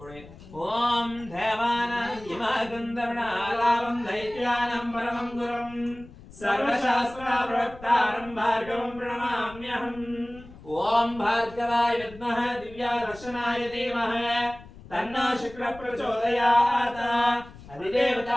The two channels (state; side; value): noise; left; rumble, 19 dB below the sound